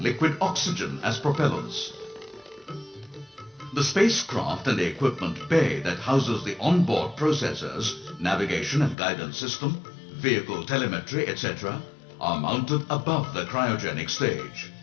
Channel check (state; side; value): drops out; right; at 9.0 s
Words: liquid oxygen as propellants. The spacecraft and the equipment bay that houses the onboard processors, navigation and guidance system, vehicle telemetry, etc., are mounted above the cryogenic stage.